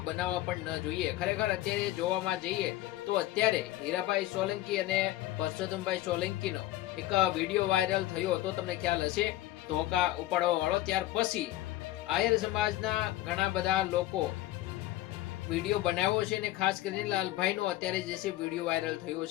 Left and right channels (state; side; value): quieter; right; 15.5 dB